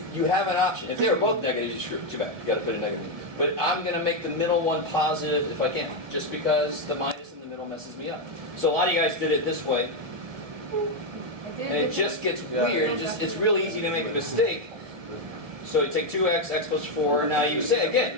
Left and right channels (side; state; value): left; late; 1.9 ms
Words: you have an option, if they were both negative, you screw it. Too bad. You got to put a negative. But I'm going to make the middle one positive if I can, just because the minus in the middle messes me up. So a lot of you guys did it this way, and it just gets weird. It's real easy to make a mistake. So you take 2x, x plus 4. Now you say